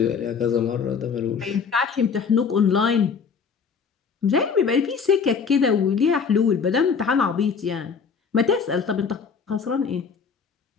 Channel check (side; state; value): right; quieter; 5.9 dB